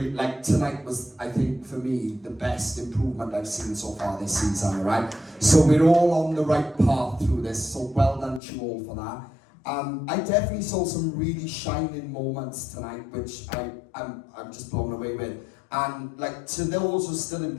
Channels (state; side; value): drops out; right; at 8.4 s